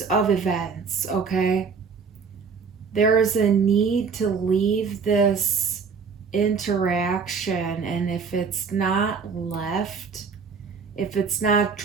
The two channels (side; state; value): left; quieter; 5.5 dB